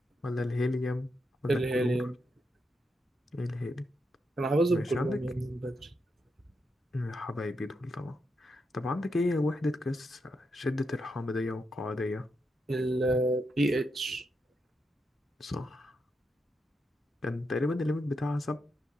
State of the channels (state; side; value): normal; both; correlation 0.83